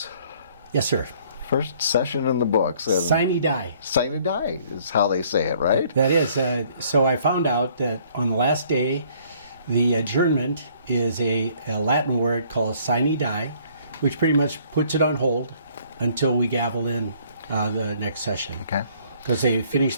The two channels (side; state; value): both; inverted; correlation -0.60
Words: Yes, sir. First session in the books. Sine die. Sine die is how they say it, right? That is. So I found out that on the last day, the adjournment is a Latin word called sine die, which pretty much puts it on hold until we gavel in the next session. Okay. Because they